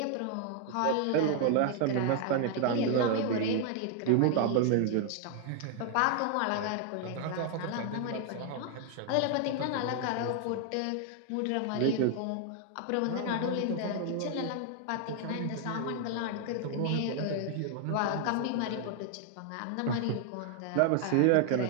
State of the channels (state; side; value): different; both; correlation 0.00